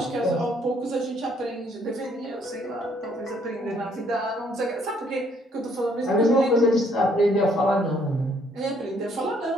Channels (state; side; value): normal; both; correlation 0.66